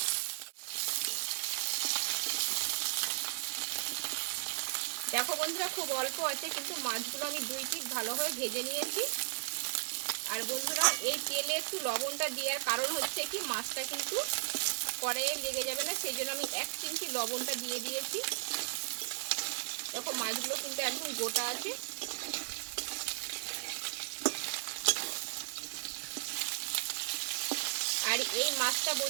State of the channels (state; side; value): silent; left; digital silence